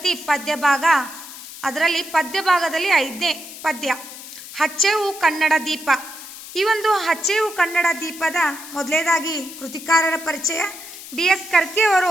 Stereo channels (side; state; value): left; noise; hiss, 14 dB below the sound